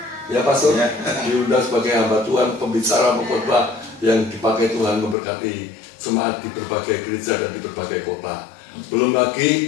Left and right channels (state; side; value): drops out; right; at 5.2 s